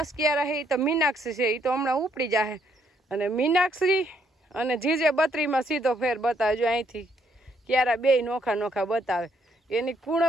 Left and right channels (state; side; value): normal; both; correlation 0.71